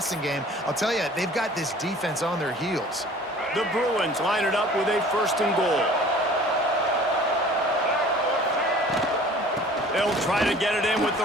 game. I'll tell you, they've got this defense on their heels. The Bruins line it up with a 1st and goal. They'll try to get it in with the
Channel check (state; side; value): normal; both; correlation 0.48